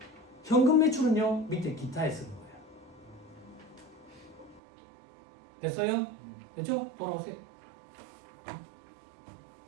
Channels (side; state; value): left; drops out; at 4.6 s